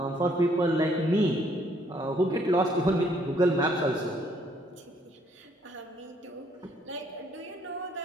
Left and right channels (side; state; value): both; normal; correlation 0.66